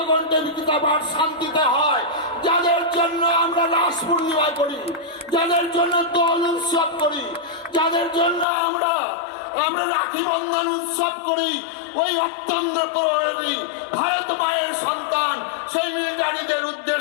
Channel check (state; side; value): drops out; right; at 8.5 s